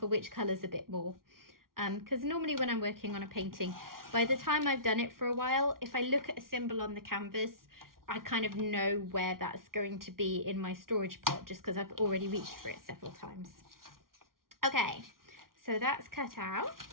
which colours a bit more. Because normally when I'm working on a painting, by the time I've done it for a while, if I look at a symbol on the canvas, I kind of know where that's going to be in my storage pot, just because I've already reached for it several times. Okay, so that's cut out.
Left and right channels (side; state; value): left; late; 0.92 ms